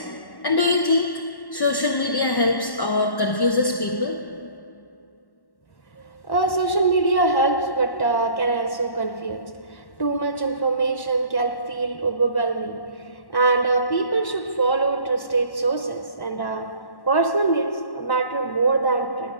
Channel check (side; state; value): right; late; 1.1 ms